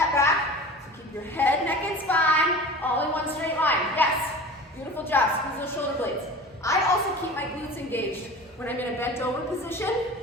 back. bent over position.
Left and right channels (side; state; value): both; normal; correlation 0.37